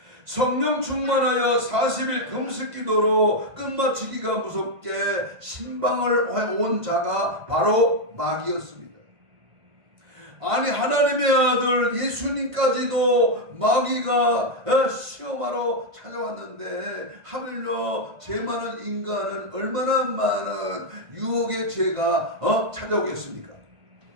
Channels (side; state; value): left; late; 1.5 ms